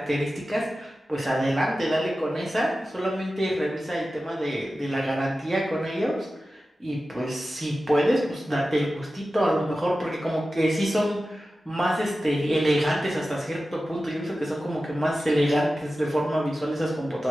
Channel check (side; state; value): both; normal; correlation 0.94